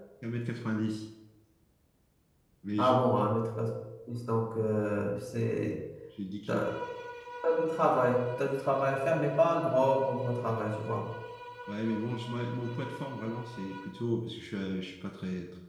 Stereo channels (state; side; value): identical; both; correlation 1.00